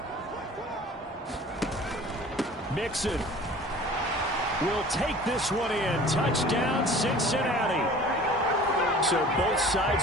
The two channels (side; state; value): both; normal; correlation 0.45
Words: Mixon will take this one in. Touchdown, Cincinnati. So both sides